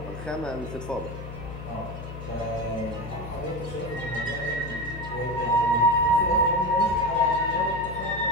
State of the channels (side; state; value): left; noise; hum, 10 dB below the sound